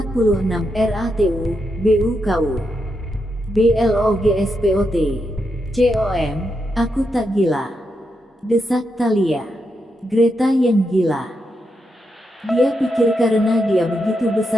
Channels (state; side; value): normal; both; correlation 0.84